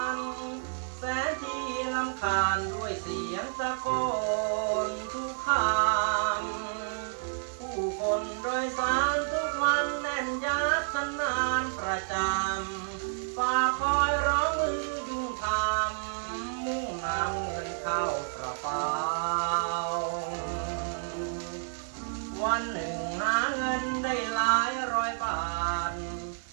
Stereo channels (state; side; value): silent; left; 58 dB below the other